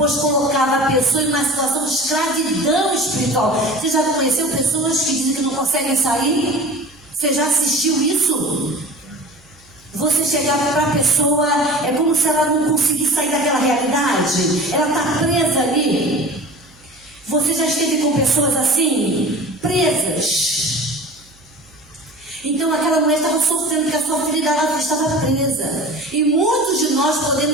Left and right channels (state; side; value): noise; right; hum, 29 dB below the sound